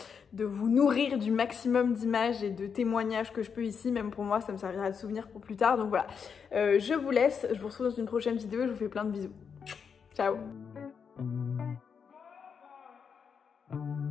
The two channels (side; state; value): right; quieter; 6.5 dB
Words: vous nourrir du maximum d'images et de témoignages que je peux ici. Même pour moi, ça me servira de souvenir pour plus tard. Donc voilà, je vous laisse. Je vous retrouve dans une prochaine vidéo et je vous fais plein de bisous. Ciao.